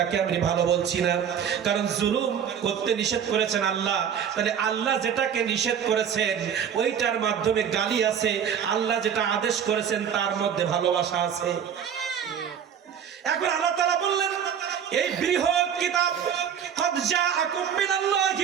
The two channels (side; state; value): left; quieter; 8.4 dB